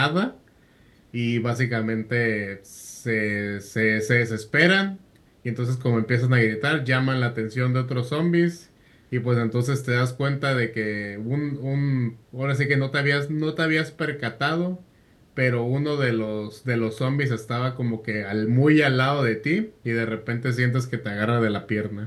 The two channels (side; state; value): both; identical; correlation 1.00